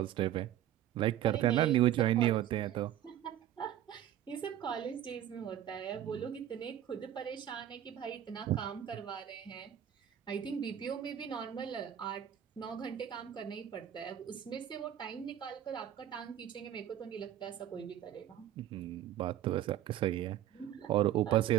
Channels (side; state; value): left; quieter; 11.5 dB